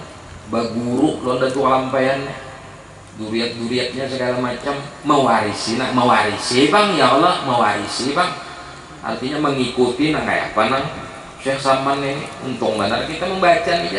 baguru lo ada tuh kelampaiannya duriat-duriatnya segala macam mewarisi bang ya Allah mewarisi bang artinya mengikuti nah kayak apa nang Syekh Salman ini untung benar kita membaca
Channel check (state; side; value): identical; both; correlation 1.00